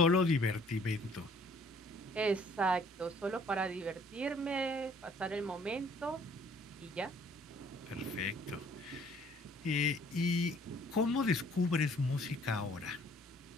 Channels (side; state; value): both; normal; correlation 0.58